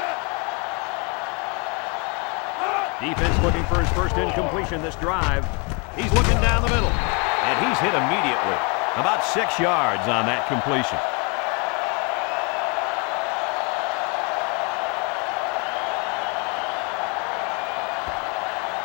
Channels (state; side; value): quieter; right; 32.5 dB